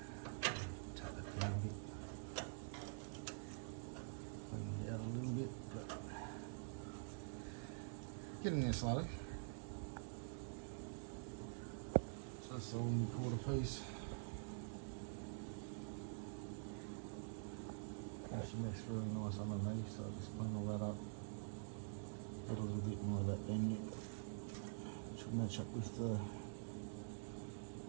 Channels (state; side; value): silent; left; digital silence